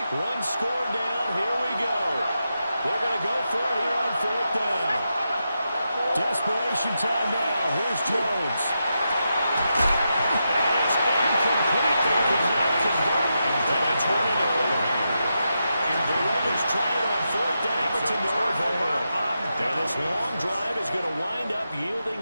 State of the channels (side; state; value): both; inverted; correlation -0.86